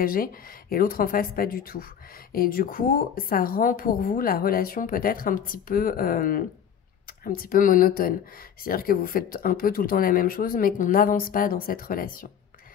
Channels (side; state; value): right; quieter; 8.4 dB